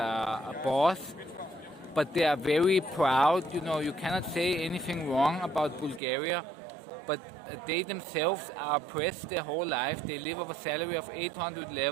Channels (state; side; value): drops out; left; at 6.0 s